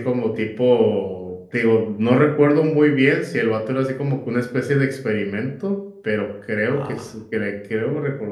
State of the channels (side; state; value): both; identical; correlation 1.00